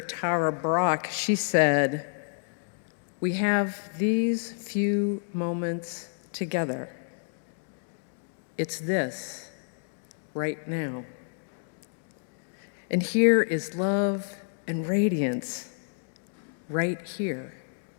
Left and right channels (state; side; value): silent; right; digital silence